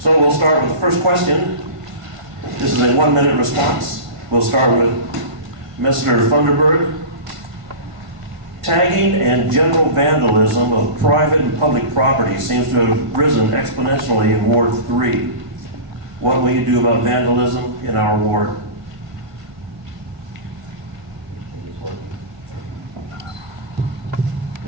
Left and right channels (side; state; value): left; late; 1.5 ms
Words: we'll start with the first question. This is a 1-minute response. We'll start with Mr. Funderburk. Tagging and general vandalism of private and public property seems to have risen exponentially in Ward 3. What will you do about vandalism in our ward?